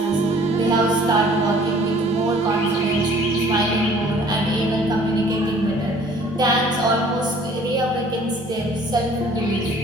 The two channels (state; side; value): normal; both; correlation 0.54